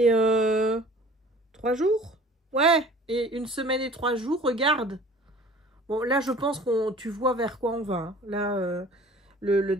3 jours. Ouais, et une semaine et 3 jours, regarde. Bon, là, je pense que tu vois vers quoi on va. Hein. Là, le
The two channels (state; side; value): normal; both; correlation 0.47